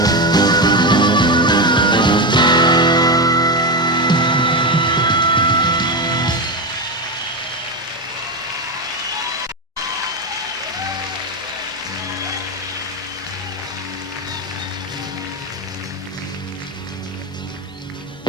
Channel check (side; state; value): both; normal; correlation 0.14